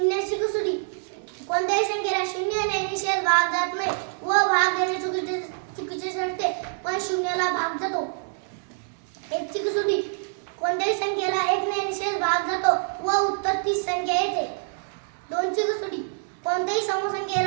कसोटी. कोणत्याही संख्येला शून्याने निषेध भाग जात नाही व भाग देणे चुकीचे ठरते, पण शून्याला भाग जातो. 1 ची कसोटी. कोणत्याही संख्येला 1 ने निषेध भाग जातो व उत्तर 30 संख्या येते. 2 ची कसोटी. कोणत्याही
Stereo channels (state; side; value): silent; left; 61 dB below the other